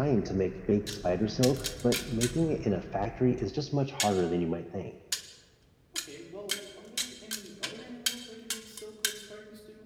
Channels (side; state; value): both; identical; correlation 1.00